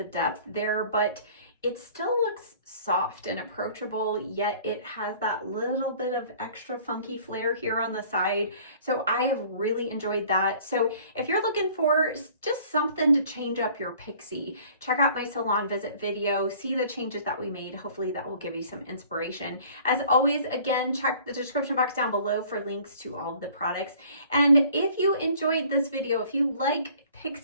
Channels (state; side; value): inverted; both; correlation -0.52